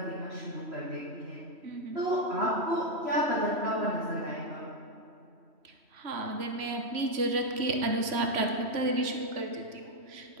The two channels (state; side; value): late; left; 3.1 ms